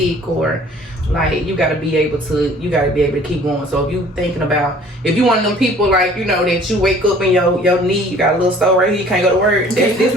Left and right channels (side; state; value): both; normal; correlation 0.52